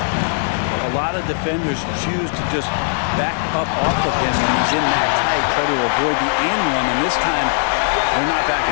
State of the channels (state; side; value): silent; right; digital silence